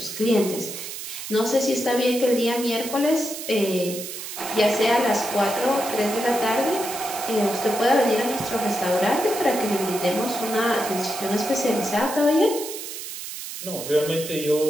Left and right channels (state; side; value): noise; right; hiss, 9 dB below the sound